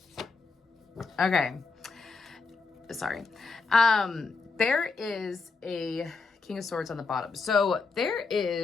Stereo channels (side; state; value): right; quieter; 4.3 dB